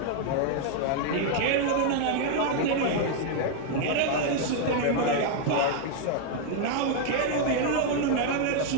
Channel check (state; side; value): different; both; correlation 0.00